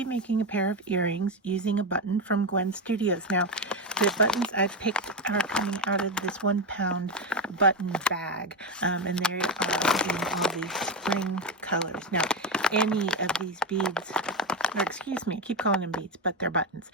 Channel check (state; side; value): normal; both; correlation 0.11